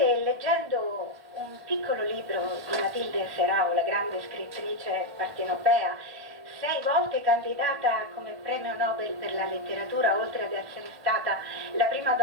leggendo un piccolo libro di Matilde Serao, la grande scrittrice partenopea, 6 volte candidata come premio Nobel per la letteratura, oltre ad essere stata la prima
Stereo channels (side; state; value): left; late; 1.5 ms